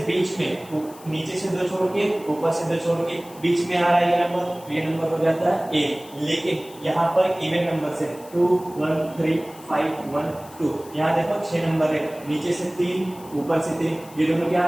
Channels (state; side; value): noise; left; hiss, 21 dB below the sound